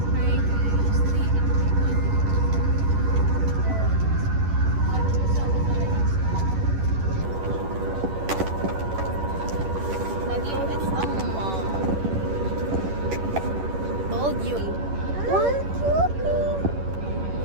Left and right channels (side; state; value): left; late; 11 ms